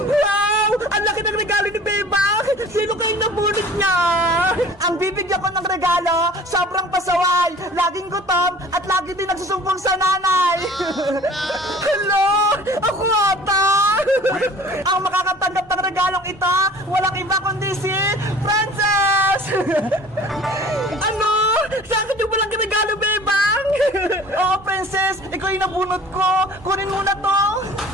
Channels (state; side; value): normal; both; correlation 0.47